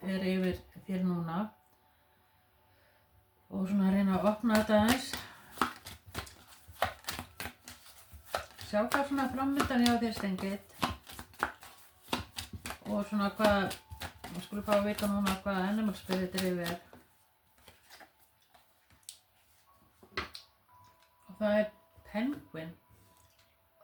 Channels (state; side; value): identical; both; correlation 1.00